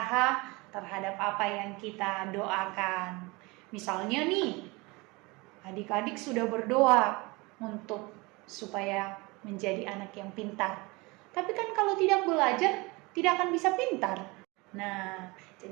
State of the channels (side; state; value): left; quieter; 25.0 dB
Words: terhadap apa yang kita doakan. Misalnya nih, adik-adik sudah berdoa untuk supaya menjadi anak yang pintar. Tapi kan kalau tidak belajar, tidak akan bisa pintar. Nah,